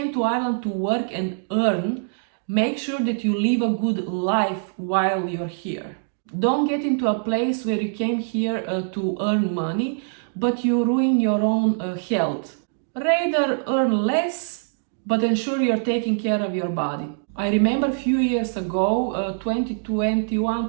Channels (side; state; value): left; silent; digital silence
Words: to Ireland to work and earn, make sure that you live a good life while you're here. Don't get into a place where you came here to earn money, but you ruin your own health. Rather earn less, but ensure you're taking care of your body. I remember a few years ago,